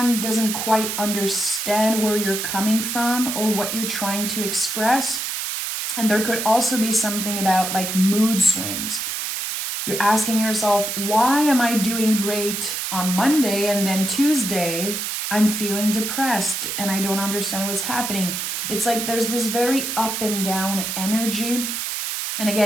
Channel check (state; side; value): noise; right; hiss, 3 dB below the sound